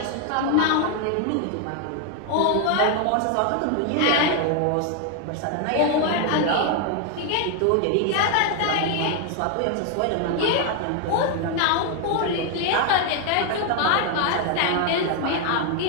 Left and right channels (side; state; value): both; different; correlation 0.00